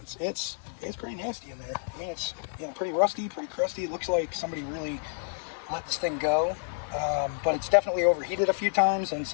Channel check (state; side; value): silent; right; digital silence